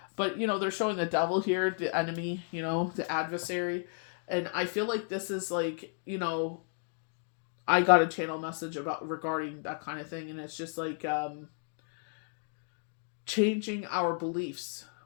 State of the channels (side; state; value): right; silent; 56 dB below the other